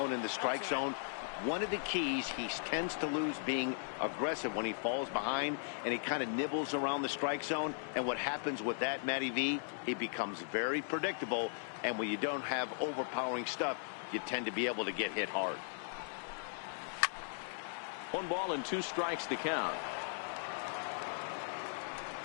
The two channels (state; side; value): silent; right; digital silence